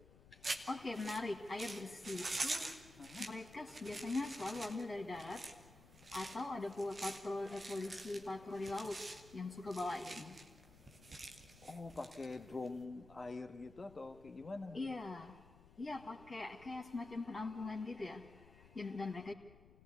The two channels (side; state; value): left; noise; rumble, 21 dB below the sound